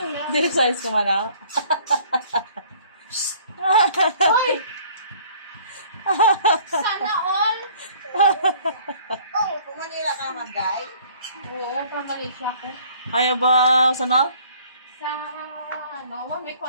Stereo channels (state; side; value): inverted; both; correlation -0.55